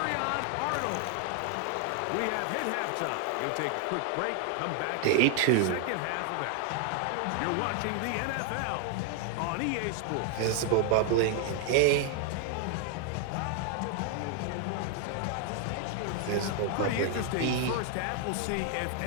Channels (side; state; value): both; different; correlation 0.00